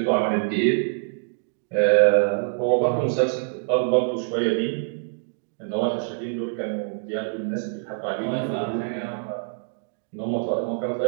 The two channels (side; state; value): left; silent; digital silence